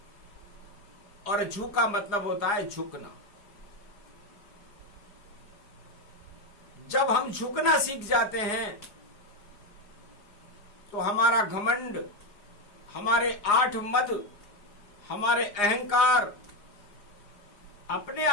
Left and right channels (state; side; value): late; right; 4.8 ms